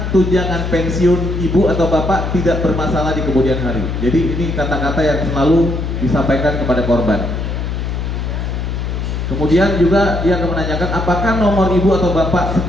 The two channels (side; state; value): left; noise; hum, 3 dB below the sound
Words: tunjangan pensiun ibu atau bapak tidak bermasalah di kemudian hari." Jadi ini kata-kata yang selalu disampaikan kepada korban. Kemudian juga dia akan menanyakan apakah nomor ibu atau bapak